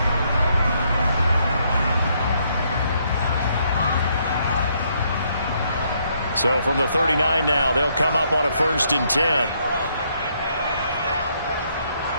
So from the 39 now, they'll come up on a 1st and 10.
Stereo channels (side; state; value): both; inverted; correlation -0.72